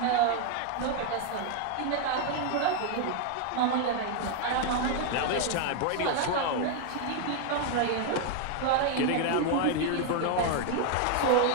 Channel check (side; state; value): both; different; correlation 0.01